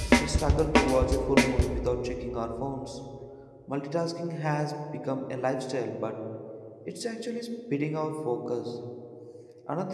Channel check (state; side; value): identical; both; correlation 1.00